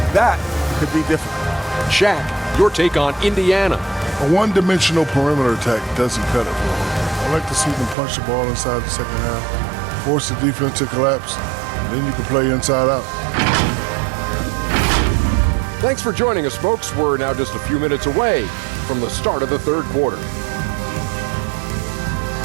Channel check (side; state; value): left; drops out; at 8.0 s